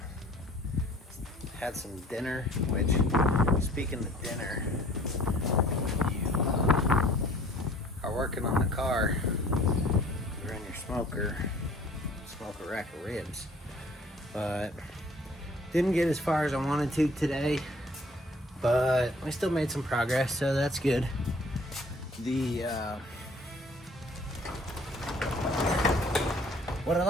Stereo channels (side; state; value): both; normal; correlation 0.54